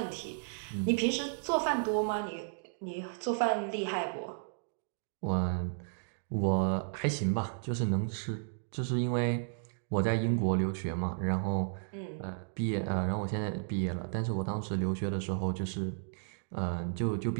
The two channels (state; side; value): silent; left; digital silence